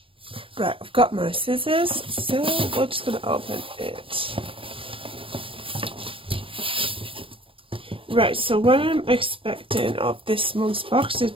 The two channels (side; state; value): left; late; 0.26 ms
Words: Right, I've got my scissors, so we're just going to open it. Right, so what I'm expecting of this month's box is,